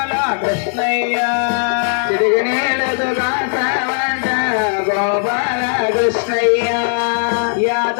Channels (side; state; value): right; silent; 60 dB below the other